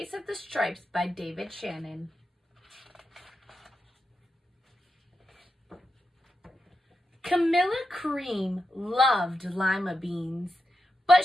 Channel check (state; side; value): normal; both; correlation 0.88